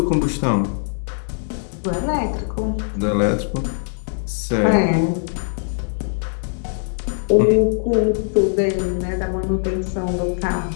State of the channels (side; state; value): right; silent; 65 dB below the other